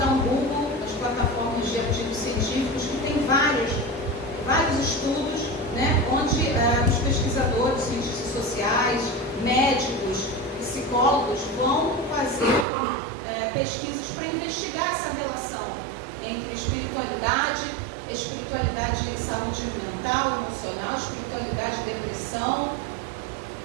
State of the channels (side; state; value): left; drops out; at 12.7 s